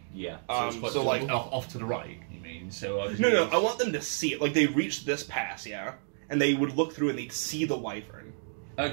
Yeah. So like Off to the right. You mean? So no. I want them to see it. Like they reach this pass, yeah, and they would look through and they'd see the wyvern.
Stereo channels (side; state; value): left; silent; digital silence